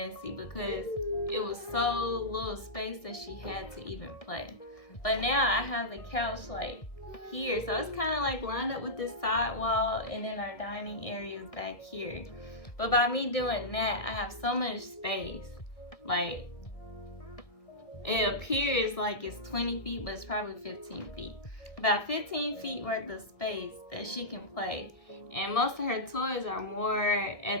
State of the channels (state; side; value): late; right; 1.6 ms